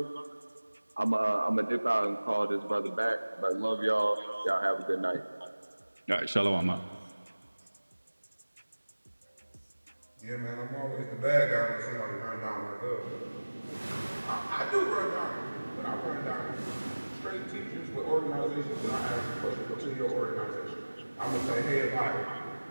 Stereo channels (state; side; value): inverted; both; correlation -1.00